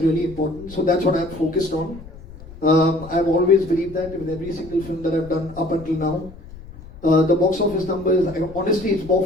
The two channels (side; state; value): left; noise; rumble, 17 dB below the sound